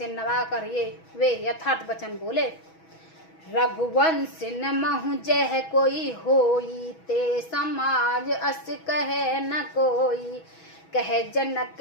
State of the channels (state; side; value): late; right; 6.2 ms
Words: नवाकर वे यथार्थ वचन बोले। रघुवंश न महु जह कोई होई, ते समाज अस कहे न कोई। कह जनक